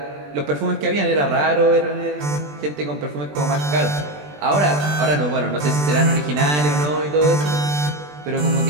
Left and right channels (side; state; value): left; late; 20 ms